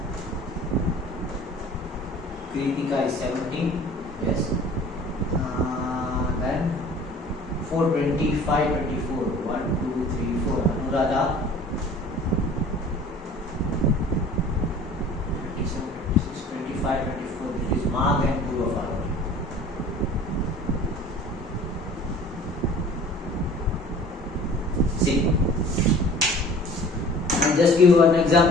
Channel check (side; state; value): both; normal; correlation 0.46